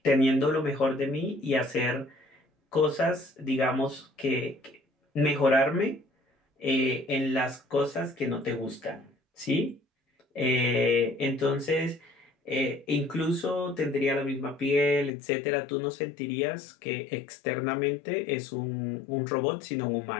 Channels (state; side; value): drops out; right; at 15.1 s